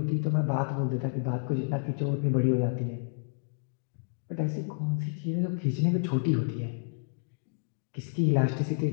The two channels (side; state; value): right; silent; digital silence